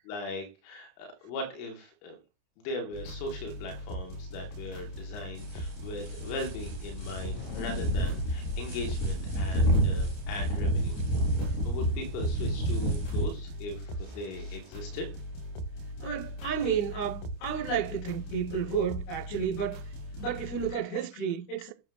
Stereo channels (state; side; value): late; right; 29 ms